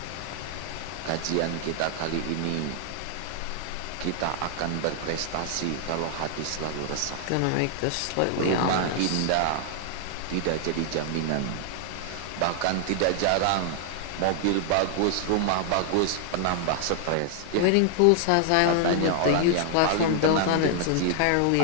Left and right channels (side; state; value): both; different; correlation 0.00